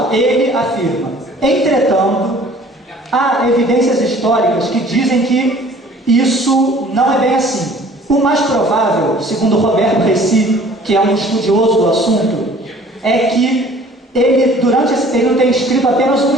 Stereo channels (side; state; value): both; normal; correlation 0.51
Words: Ele afirma. Entretanto, há evidências históricas que dizem que isso não é bem assim. O mais provável, segundo Roberto Reci, que é um estudioso do assunto, é que ele, durante esse período, tem escrito apenas um